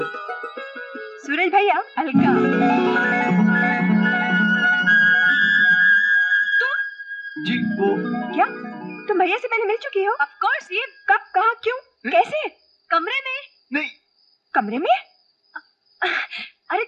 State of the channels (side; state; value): both; identical; correlation 1.00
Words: सूरज भैया, अलका। जी वो क्या तुम भैया से पहले मिल चुकी हो? Of course. ये कब, कहाँ, क्यों, कैसे? कमरे में? नहीं। कमरे में? अरे